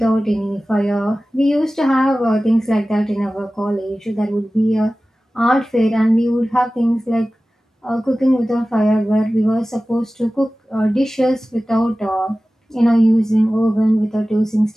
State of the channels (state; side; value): normal; both; correlation 0.96